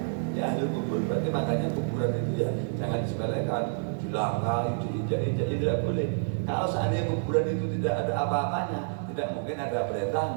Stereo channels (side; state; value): left; silent; digital silence